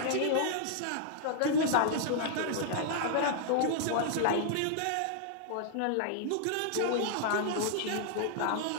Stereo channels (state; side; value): different; both; correlation -0.01